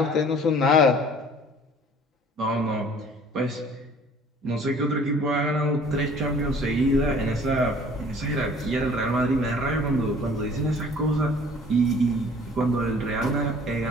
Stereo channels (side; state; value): both; normal; correlation 0.51